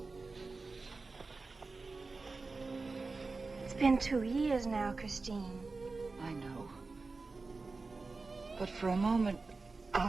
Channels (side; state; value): left; quieter; 3.9 dB